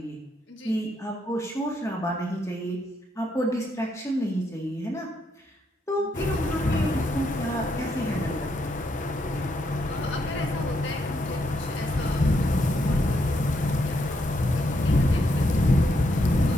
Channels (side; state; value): both; normal; correlation 0.78